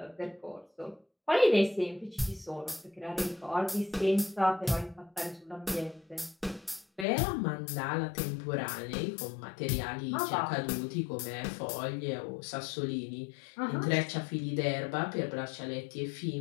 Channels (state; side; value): drops out; right; at 7.1 s